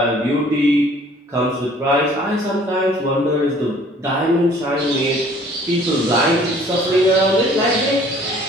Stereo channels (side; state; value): both; normal; correlation 0.55